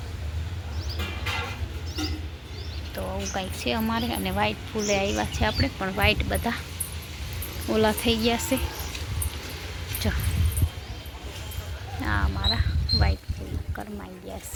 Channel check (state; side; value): identical; both; correlation 1.00